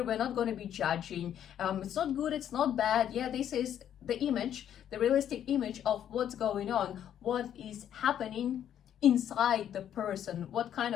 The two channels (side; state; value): right; quieter; 10.1 dB